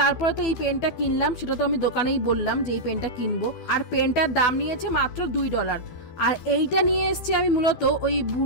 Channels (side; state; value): right; late; 12 ms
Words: তো এই পেনটা কিনলাম, সেটা তো আমি দোকানেই বললাম যে এই পেনটা কিনবো, আর পেনটার দাম নিয়েছে মাত্র $2। আর এইটা নিয়ে এসেছি আমি মূলত ওই